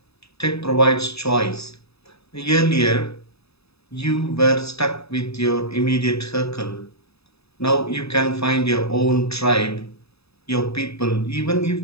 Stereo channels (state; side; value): late; right; 0.79 ms